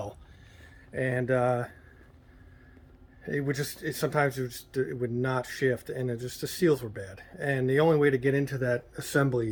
and it would just sometimes it would not shift, and the seals were bad. And the only way to get into that assembly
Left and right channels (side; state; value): both; identical; correlation 1.00